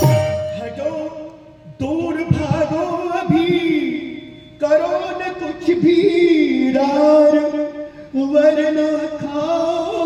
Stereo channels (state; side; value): identical; both; correlation 1.00